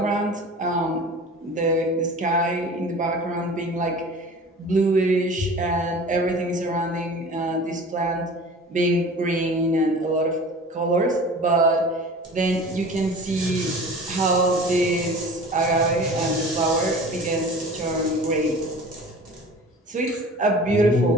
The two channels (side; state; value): both; normal; correlation 0.41